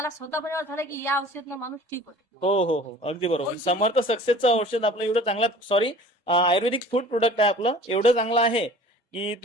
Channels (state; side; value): normal; both; correlation 0.46